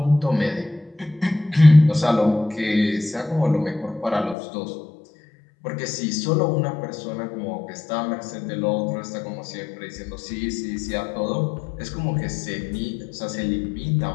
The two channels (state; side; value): drops out; right; at 4.4 s